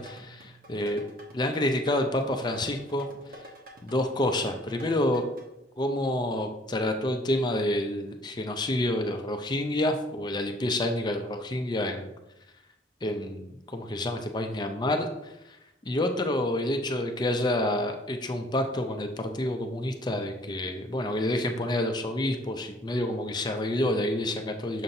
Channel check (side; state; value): both; normal; correlation 0.57